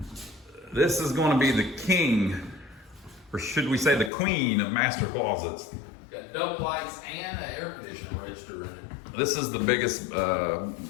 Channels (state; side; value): drops out; right; at 4.1 s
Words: This is going to be the king, or should we say the queen of master closets. Got double lights and an air conditioner register in it. This is the biggest